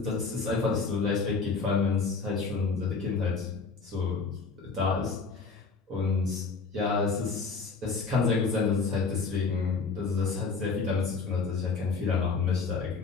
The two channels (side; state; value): right; quieter; 4.6 dB